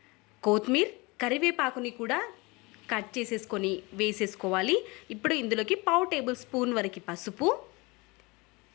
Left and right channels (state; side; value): quieter; right; 25.4 dB